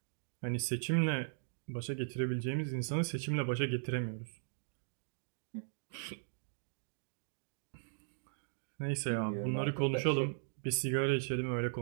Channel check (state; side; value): silent; left; digital silence